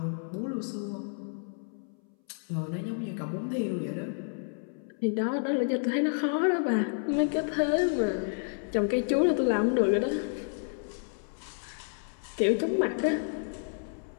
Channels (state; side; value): silent; right; 58 dB below the other